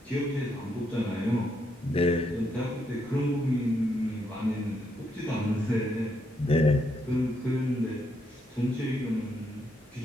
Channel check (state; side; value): normal; both; correlation 0.77